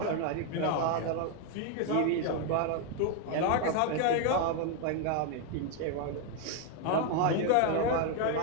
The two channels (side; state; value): both; different; correlation 0.01